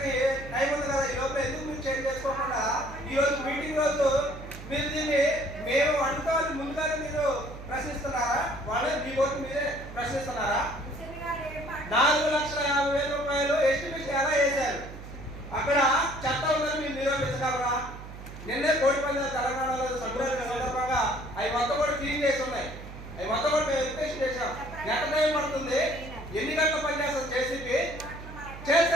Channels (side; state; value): right; noise; hum, 13 dB below the sound